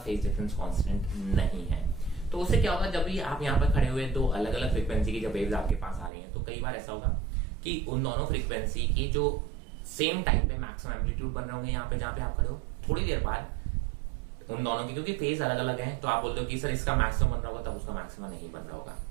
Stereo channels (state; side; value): drops out; left; at 6.1 s